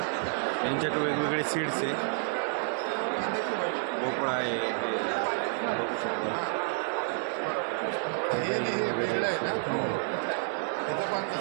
यांच्याकडे वेगवेगळे सीड्स आहे. भोपळा आहे, हे बघू शकता.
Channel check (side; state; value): left; silent; digital silence